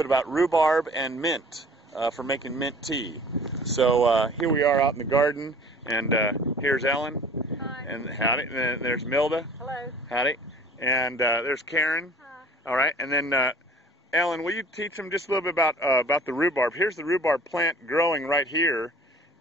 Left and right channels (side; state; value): both; normal; correlation 0.47